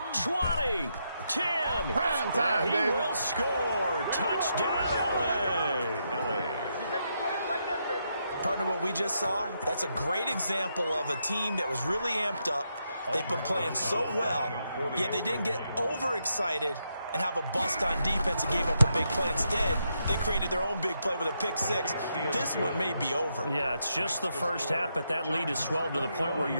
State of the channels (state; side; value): inverted; both; correlation -0.81